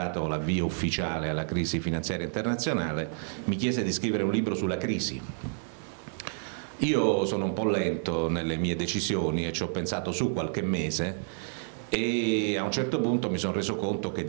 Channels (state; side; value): silent; left; 58 dB below the other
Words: l'avvio ufficiale alla crisi finanziaria internazionale, mi chiese di scrivere un libro sulla crisi. Io sono un po' lento nelle mie decisioni e ci ho pensato su qualche mese e a un certo punto mi sono reso conto che